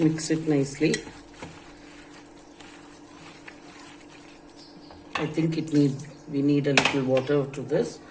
it nicely. I think we need a little water to this.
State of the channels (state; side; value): identical; both; correlation 1.00